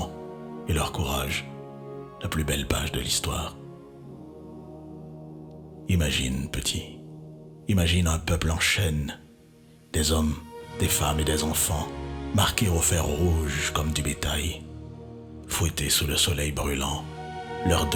et leur courage la plus belle page de l'histoire. Imagine, petit, imagine un peuple en chaîne, des hommes, des femmes et des enfants, marqués au fer rouge comme du bétail, fouettés sous le soleil brûlant, leur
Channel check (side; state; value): both; identical; correlation 1.00